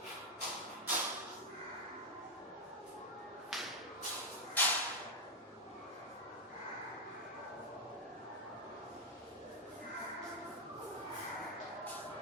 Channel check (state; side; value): normal; both; correlation 0.01